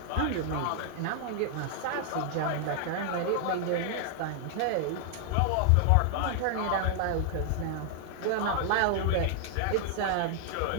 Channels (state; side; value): different; both; correlation 0.00